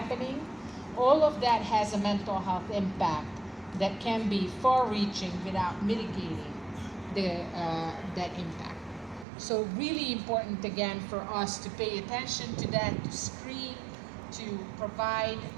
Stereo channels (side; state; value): left; drops out; at 9.2 s